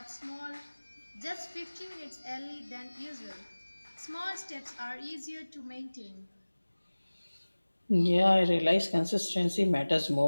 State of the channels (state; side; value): inverted; both; correlation -1.00